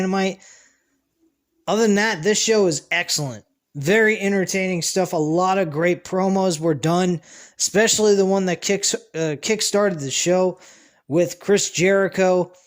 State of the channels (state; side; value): identical; both; correlation 1.00